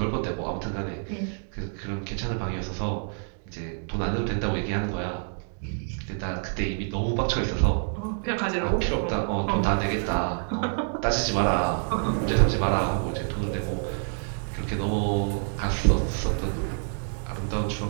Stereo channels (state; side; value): silent; left; 60 dB below the other